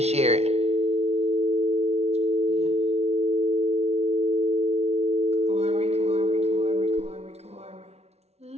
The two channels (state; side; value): late; left; 0.31 ms